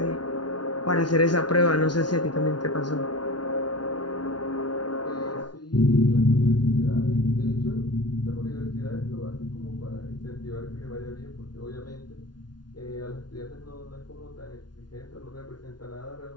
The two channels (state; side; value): late; right; 0.70 ms